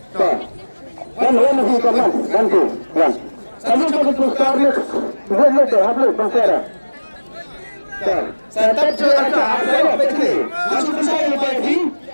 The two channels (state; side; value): inverted; both; correlation -1.00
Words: Kan masih kaman, bantu. Kamu betul sekali. Boleh tu, habis bangsa. Tetap cuaca ada begini. Masuk saya lagi.